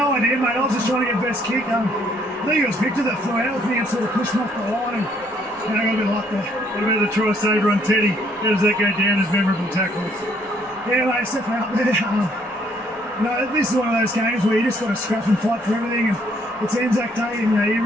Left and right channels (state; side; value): normal; both; correlation 0.66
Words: idea, mate. I was just trying to get best kick. I think it was Victor that flew out with me and sort of pushed me off the line, and I got a bit of luck there. What about the try saver on Teddy? How does that go down as memorable tackles? Yeah, mate, stepping out there. This is one of those games where you just got to scrap and fight for everything, and it's Anzac Day, and you